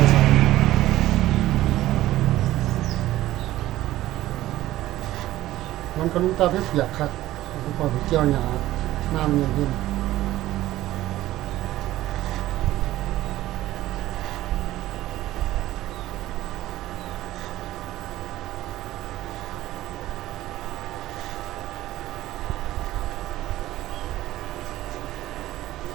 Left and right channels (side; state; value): left; quieter; 15.3 dB